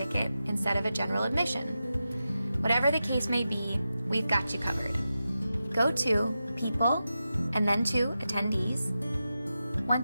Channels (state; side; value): inverted; both; correlation -0.91